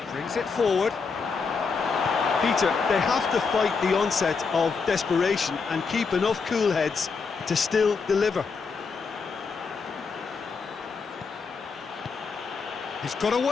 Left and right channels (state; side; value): quieter; right; 5.0 dB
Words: Brings it forward. Peter, they have to fight the onset of desperation and keep enough cool heads to still deliver. He's got